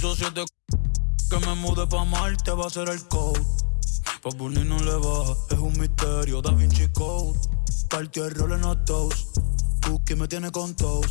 que me mude pa' Marte va a ser el code. Pa' Bunny no le va, es un misterio, Da Vinci Code. Cartier Rolling a toast, Cookie me tiene con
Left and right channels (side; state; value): right; silent; digital silence